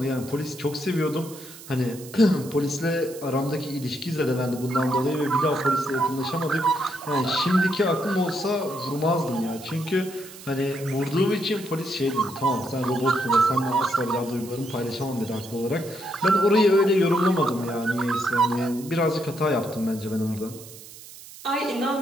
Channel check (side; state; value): right; noise; hiss, 17 dB below the sound